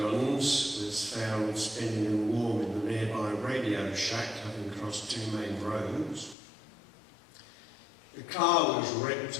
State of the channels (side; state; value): right; drops out; at 6.4 s